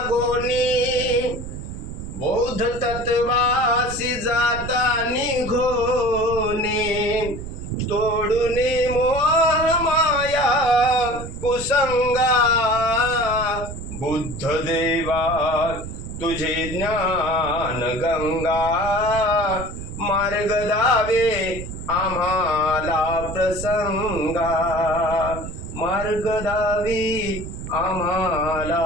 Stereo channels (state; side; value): noise; right; rumble, 9 dB below the sound